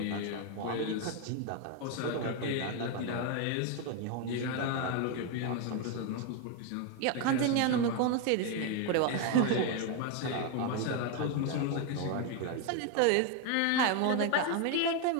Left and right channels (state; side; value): different; both; correlation 0.01